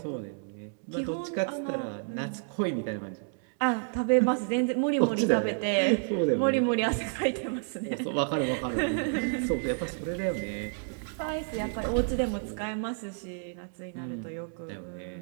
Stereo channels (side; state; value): left; silent; digital silence